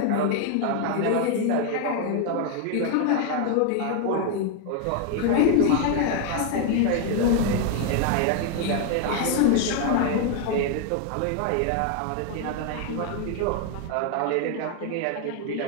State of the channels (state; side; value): different; both; correlation 0.00